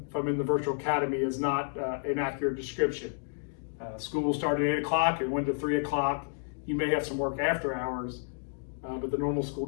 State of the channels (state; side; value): silent; right; digital silence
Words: if I'm in the Virtual Academy is not an accurate description. School will start at 8 o'clock and 1 to 3 o'clock. You may have some work after hours, but the normal school